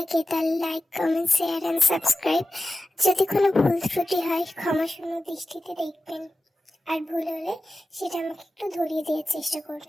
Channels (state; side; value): normal; both; correlation 0.93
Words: তাহলে like, comment, share and subscribe. যদি কোনো ভুল ত্রুটি হয় ক্ষমাশূন্য দৃষ্টিতে দেখবেন, আর ভুল হলে সেটা আমাকে একটু ধরিয়ে দেওয়ার চেষ্টা